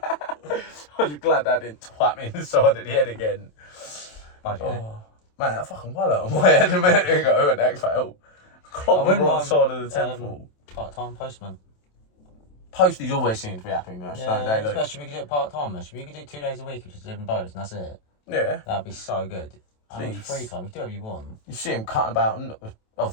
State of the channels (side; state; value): right; late; 27 ms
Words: was glad that didn't twat me in the side of the head again. Budget. Oh, man, that fucking wallet on my head a minute ago and that fell. Clocked me right side of the temple. Part-time postman. Posties always seem to be happy, don't they? Like, Especially we could do it part-time. We could do 2 days a week, which is living boats, and that's it. yeah. That'd be so good. And Please. free time, you can do whatever you want. You see them cutting about, and